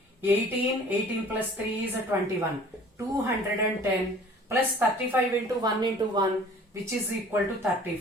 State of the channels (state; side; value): normal; both; correlation 0.49